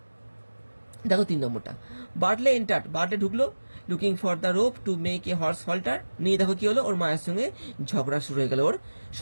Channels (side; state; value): both; inverted; correlation -1.00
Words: দেখো 3 নম্বরটা, বার্টলে এন্টার্ড, বার্টলে ঢুকলো looking for the rope to make a horse Holter. নিয়ে দেখো কি হলো, ওর মায়ের সঙ্গে ঝগড়া শুরু হয়ে গেল ওর